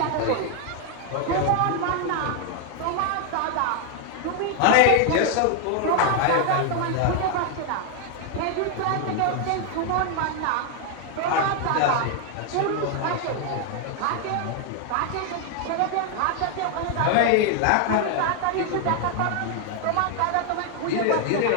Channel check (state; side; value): different; both; correlation 0.00